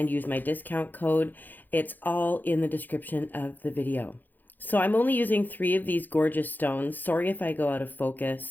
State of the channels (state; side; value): late; right; 0.087 ms